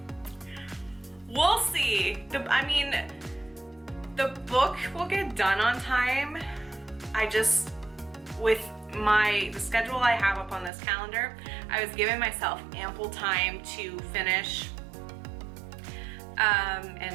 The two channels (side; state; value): left; drops out; at 10.7 s